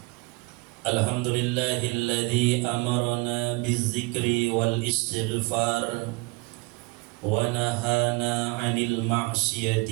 Alhamdulillahilladzi amarna bizzikri wal istighfar wa nahana 'anil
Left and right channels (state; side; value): quieter; left; 26.5 dB